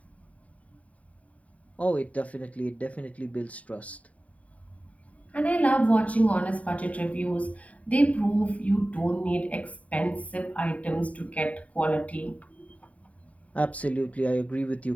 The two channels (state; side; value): late; right; 0.068 ms